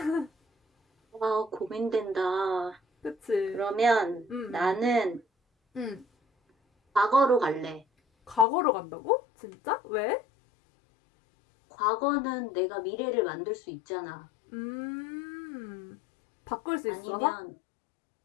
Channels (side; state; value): right; drops out; at 8.5 s